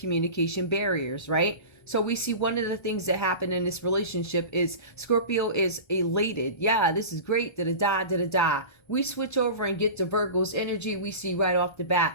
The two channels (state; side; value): late; right; 1.3 ms